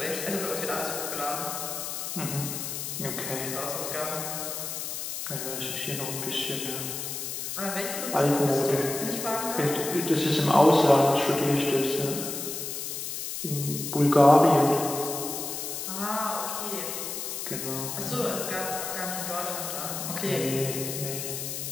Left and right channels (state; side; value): noise; left; hiss, 5 dB below the sound